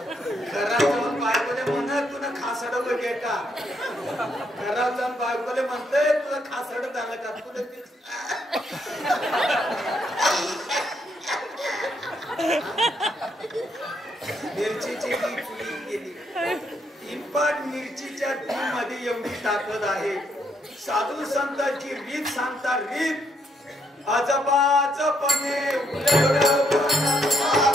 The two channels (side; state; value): both; normal; correlation 0.74